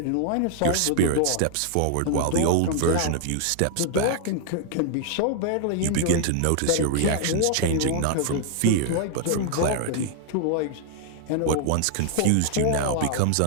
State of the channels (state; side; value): different; both; correlation 0.00